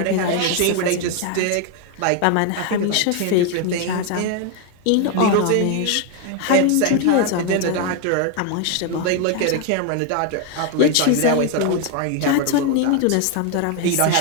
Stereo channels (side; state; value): both; different; correlation 0.01